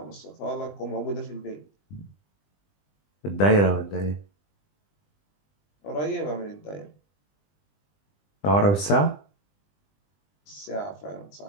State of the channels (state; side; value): late; right; 20 ms